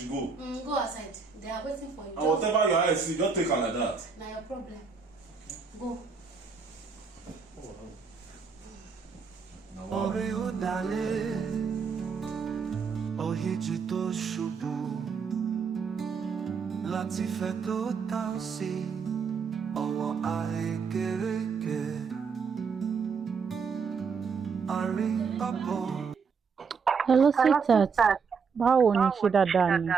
go. Go outside. They are waiting for you. And whatever your eyes see, just take her like that. Now your problem. Go. Orí ó dalẹ̀, òhìjì tó ṣubú, láti fẹ́ tó tán sí ọwọ́ àrékérekè, àríbábọ̀. Hello, sweetheart. Báwo ni ṣe dáadáa ni?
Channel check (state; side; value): quieter; left; 5.6 dB